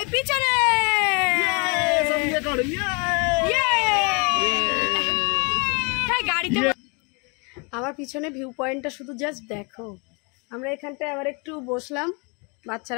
পিছনে। গাড়িতে আমার পিছনে ভিউ পয়েন্টটা শুধু জাস্ট দেখো। আমরা এখানটায় আবার একটু বসলাম,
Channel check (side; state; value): right; quieter; 33.5 dB